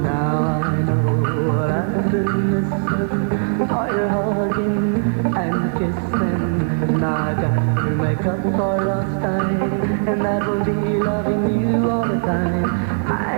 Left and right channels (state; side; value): silent; left; 63 dB below the other